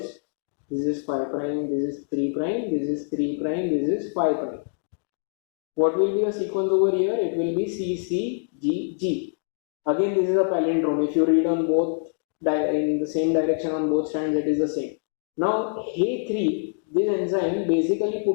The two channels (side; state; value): right; silent; digital silence